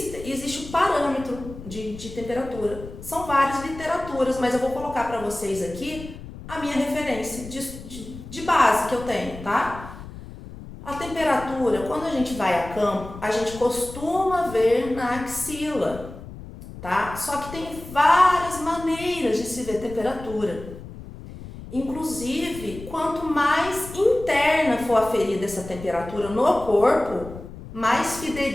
um parâmetro de temperatura. São várias literaturas, mas eu vou colocar para vocês aqui a minha referência de base que eu tenho, tá? A temperatura, quando a gente vai a campo, a gente costuma ver na axila, tá? Só que tem várias maneiras de se ver temperatura. Inclusive, quanto mais interna for aferida essa temperatura no corpo, mais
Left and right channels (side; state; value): left; noise; rumble, 14 dB below the sound